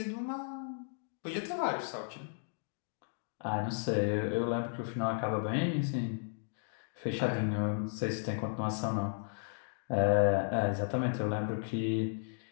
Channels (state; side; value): silent; right; digital silence